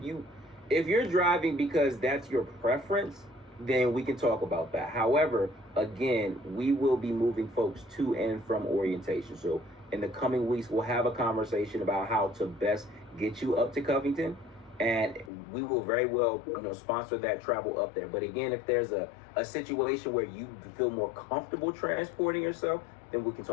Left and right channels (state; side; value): drops out; right; at 15.3 s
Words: you're driving because that's your preference, then we can talk about that. However, again, we will be moving folks to and from orientation. So in the coming weeks, we'll have a conversation about how to best get you up to Covington, and we will very well, sponsor that travel up there. But again, if there's a situation where you feel more comfortable transporting yourself, then we can